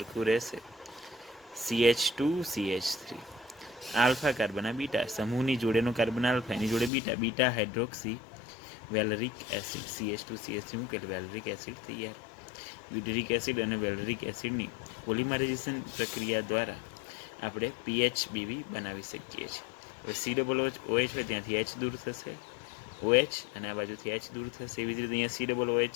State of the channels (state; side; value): drops out; right; at 6.9 s